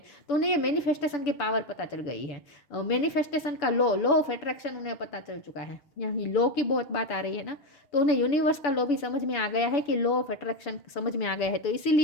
तो उन्हें ये मैनिफेस्टेशन की पावर पता चल गई है। मैनिफेस्टेशन का लॉ ऑफ अट्रैक्शन उन्हें पता चल चुका है। यहाँ लॉ की बहुत बात आ रही है ना, तो उन्हें यूनिवर्स का लॉ भी समझ में आ गया है कि लॉ ऑफ अट्रैक्शन समझ में आ गया है। तो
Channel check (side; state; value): right; late; 6.9 ms